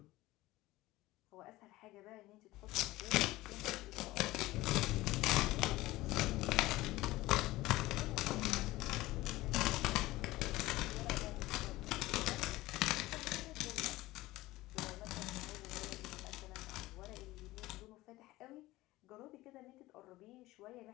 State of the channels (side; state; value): right; quieter; 18.3 dB